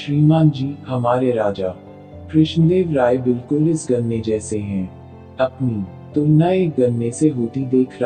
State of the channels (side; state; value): both; identical; correlation 1.00